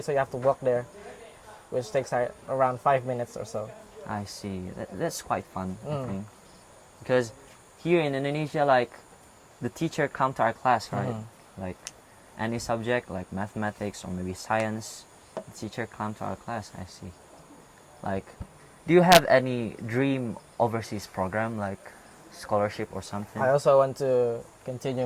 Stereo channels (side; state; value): both; identical; correlation 1.00